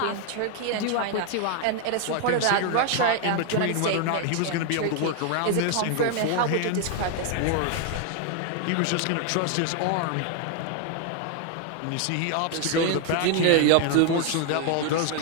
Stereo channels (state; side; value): different; both; correlation 0.00